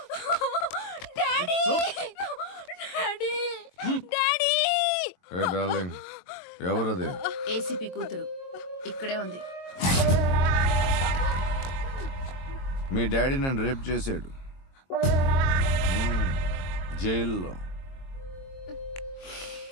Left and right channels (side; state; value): right; late; 22 ms